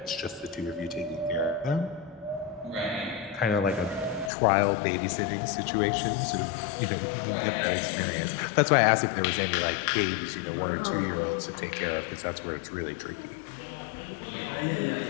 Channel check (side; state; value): right; drops out; at 4.3 s